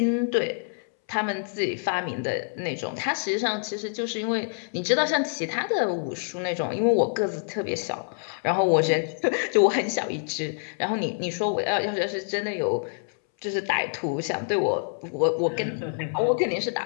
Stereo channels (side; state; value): right; silent; 61 dB below the other